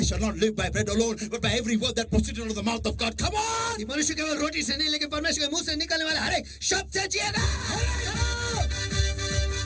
shall not live by bread alone, but by every word that proceeds out of the mouth of God. Come on! मनुष्य केवल रोटी से नहीं, लेकिन परमेश्वर के मुंह से निकलने वाले हर एक शब्द से जिएगा।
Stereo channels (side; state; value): both; identical; correlation 1.00